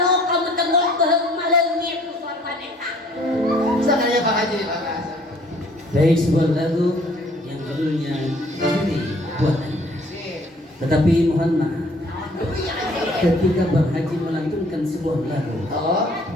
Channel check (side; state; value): both; normal; correlation 0.58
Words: kamu tengok malengit tu sorban eta. Sananya Pak Haji, makasih. Baik, sebuah lagu yang judulnya Ciri Buat Anda. Tetapi mohon maaf, ketika Bang Haji melantunkan sebuah lagu, Oh,